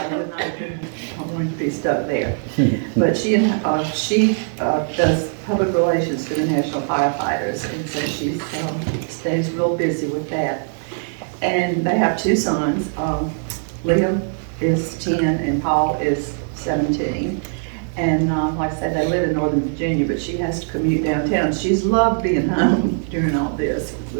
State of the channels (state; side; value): silent; left; 65 dB below the other